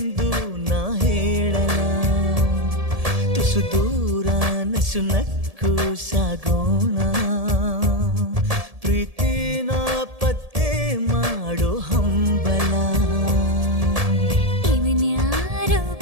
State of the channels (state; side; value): late; left; 1.7 ms